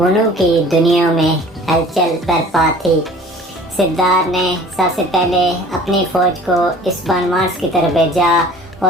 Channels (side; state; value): both; normal; correlation 0.47